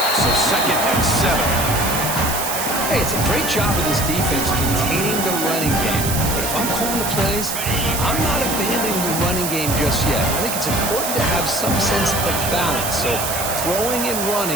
so 2nd and 7. Hey, it's a great job of this defense containing the running game. But if I'm calling the plays, I'm not abandoning the running game just yet. I think it's important to have some sense of balance. So throwing and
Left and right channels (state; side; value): noise; right; hiss, 3 dB below the sound